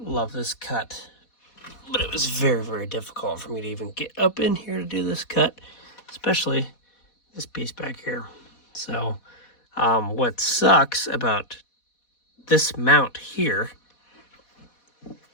love this cut, but it was very, very difficult for me to even get up in here to do this cut, especially this piece back here. So what sucks about this mount here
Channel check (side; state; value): right; late; 4.1 ms